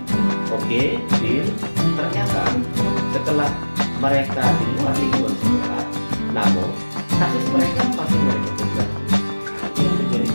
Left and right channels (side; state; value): both; inverted; correlation -1.00